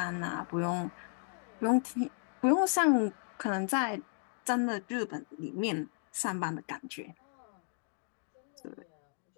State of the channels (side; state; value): right; silent; 55 dB below the other